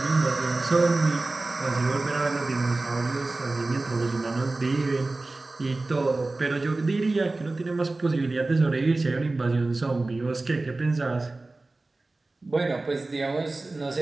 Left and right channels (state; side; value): quieter; left; 3.2 dB